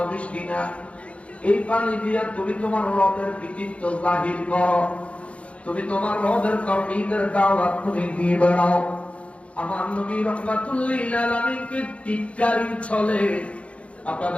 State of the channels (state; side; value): late; right; 0.062 ms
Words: মিষ্টি না। এই পানি দিয়ে তুমি তোমার রবের কৃতিত্ব জাহির করো, তুমি তোমার রবের তাওহীদের দাওয়াত তুমি দিয়ে বেড়াও। আমার নবী রাহমাতুল লিল আলামিনকে টিটকারি চলে।